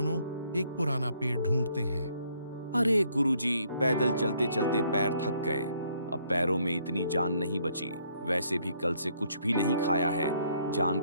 एक पुराना पेड़ ढूंढते हैं। अरे गुरुजी, पैदल चलते चलते पैर थक गए। अब पैरों में इतनी जान नहीं बची। वैसे भी कल से कुछ भी नहीं खाया है, जान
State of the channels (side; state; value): both; inverted; correlation -0.67